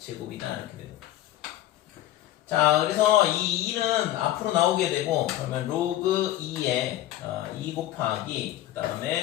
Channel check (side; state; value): right; quieter; 14.0 dB